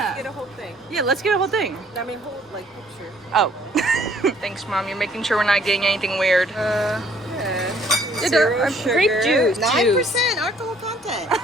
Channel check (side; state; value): both; normal; correlation 0.61